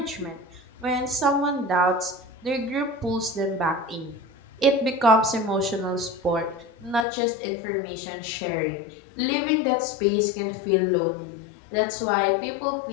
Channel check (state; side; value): drops out; right; at 7.1 s